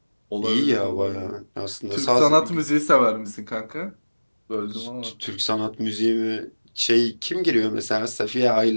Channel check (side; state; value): both; inverted; correlation -1.00